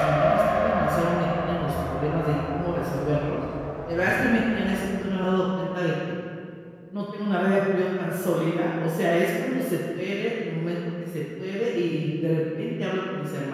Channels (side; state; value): both; identical; correlation 1.00